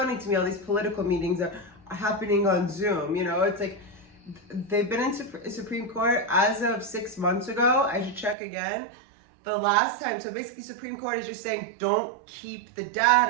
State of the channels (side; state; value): left; drops out; at 8.3 s